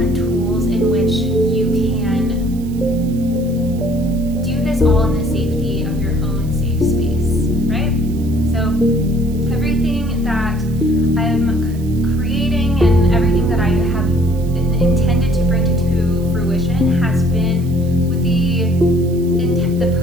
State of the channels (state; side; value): noise; right; hiss, 23 dB below the sound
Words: tools in which you can do this all in the safety of your own safe space, right? So everything that I'm creating and everything that I have intended to bring to fruition has been with the